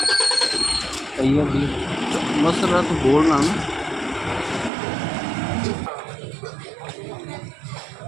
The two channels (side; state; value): left; drops out; at 4.7 s